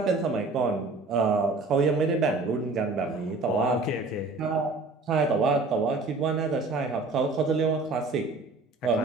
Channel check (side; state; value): left; quieter; 3.5 dB